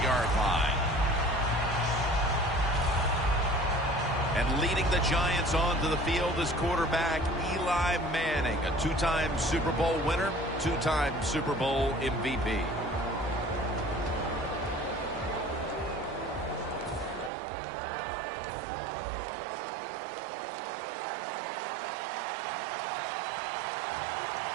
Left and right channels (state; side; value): drops out; left; at 17.3 s